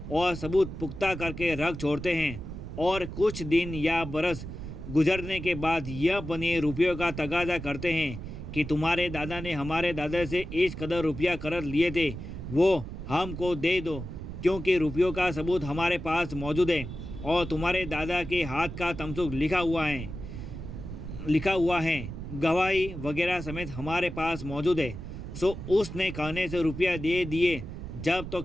और सबूत पुख्ता करके रख छोड़ते हैं। और कुछ दिन या बरस गुजरने के बाद यह बनिए रुपयों का तगाजा करते हैं कि तुम्हारे दादा ने हमारे दादा से इस कदर रुपया कर्ज लिए थे, वो हमको दे दो, क्योंकि रुपयों का सबूत हमारे पास मौजूद है और तुम्हारे दादा के हाथ का तमसुक लिखा हुआ है, गवाही वगैरह समेत हमारे पास मौजूद है। सो उसने कहने से रुपया दे दिए, जब तो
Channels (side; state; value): right; noise; rumble, 9 dB below the sound